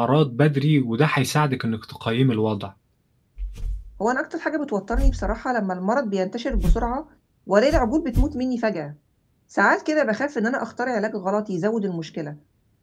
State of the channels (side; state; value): both; identical; correlation 1.00